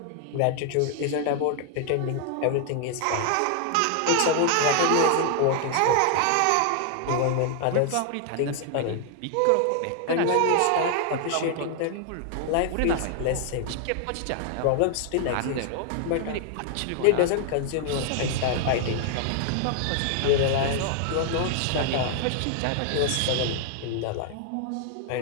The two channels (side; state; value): both; different; correlation 0.00